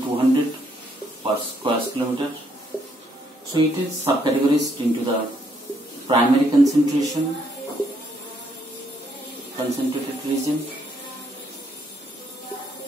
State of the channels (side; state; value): both; normal; correlation 0.72